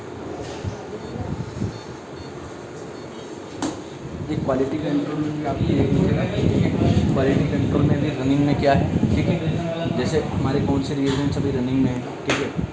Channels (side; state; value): both; identical; correlation 1.00